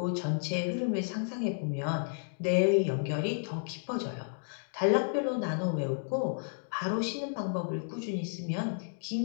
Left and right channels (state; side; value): silent; right; digital silence